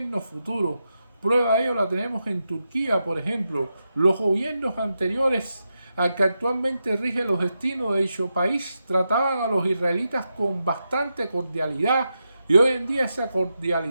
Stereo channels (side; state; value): both; inverted; correlation -0.87